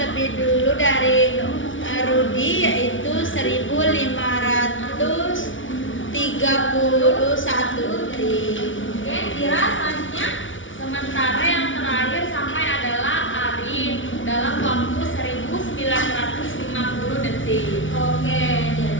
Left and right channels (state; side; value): late; right; 0.56 ms